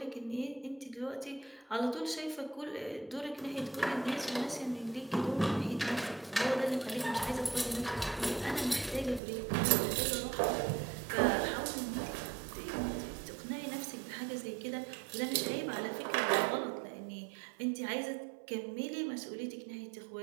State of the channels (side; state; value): left; drops out; at 9.2 s